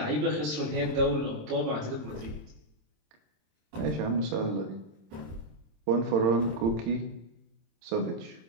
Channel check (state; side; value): late; left; 27 ms